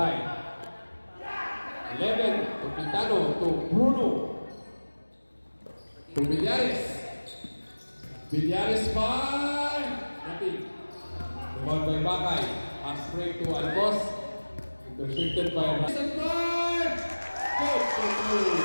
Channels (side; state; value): both; inverted; correlation -1.00